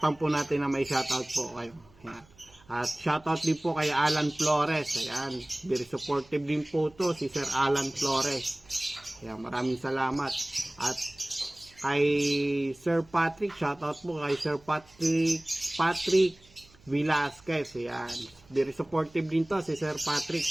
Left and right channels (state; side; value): noise; right; hum, 28 dB below the sound